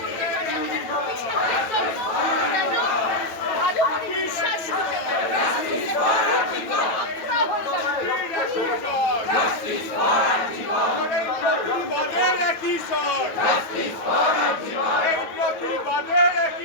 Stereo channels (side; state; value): right; late; 9.1 ms